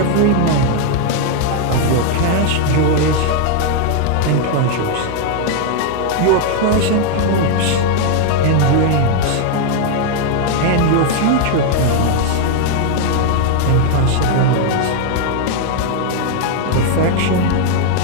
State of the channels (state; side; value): different; both; correlation 0.00